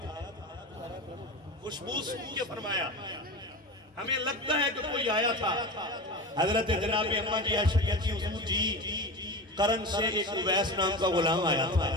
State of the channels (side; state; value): both; normal; correlation 0.28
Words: خوشبو سن کے فرمایا ہمیں لگتا ہے کہ کوئی آیا تھا۔ حضرت جناب اماں جی عائشہ کہتی حضور جی کرن سے ایک اویس نام کا غلام آیا تھا،